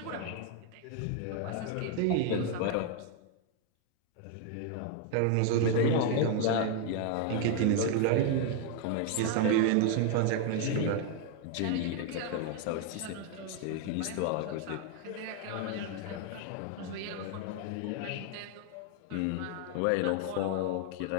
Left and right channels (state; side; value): different; both; correlation 0.00